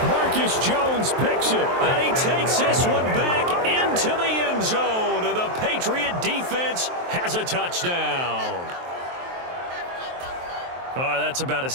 Marcus Jones picks it. And he takes this one back into the end zone. And the Patriot defense has a touchdown. Oh, that's about as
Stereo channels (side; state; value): left; late; 23 ms